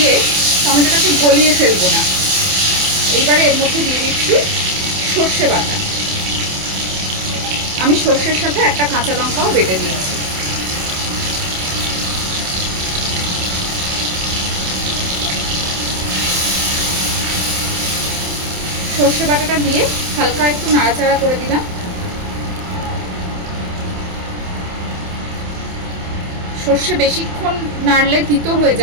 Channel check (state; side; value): late; left; 27 ms